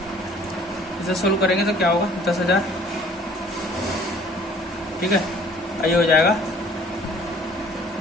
इसे सोल्व करेंगे तो क्या होगा, 10,000, ठीक है। आइए हो जाएगा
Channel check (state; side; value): normal; both; correlation 0.54